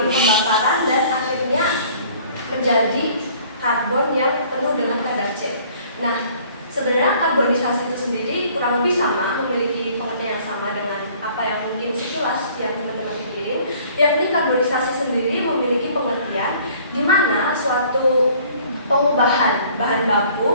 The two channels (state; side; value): inverted; both; correlation -0.55